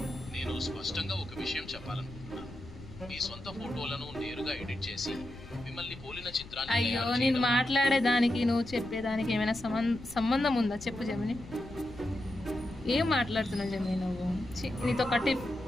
నేను స్పష్టంగా ఒక విషయం చెప్పాలనుకుంటున్నాను. మీ సొంత ఫోటోలను నేరుగా ఎడిట్ చేసి మిమ్మల్ని పోలిన చిత్రాన్ని అయ్యో నేను మాట్లాడేదానికి నువ్వు చెప్పేదానికి ఏమైనా సంబంధం ఉందా చెప్పు జమిని. ఏం మాట్లాడుతున్నావు జమిని నువ్వు? నీతో కట్టి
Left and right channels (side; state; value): left; noise; rumble, 16 dB below the sound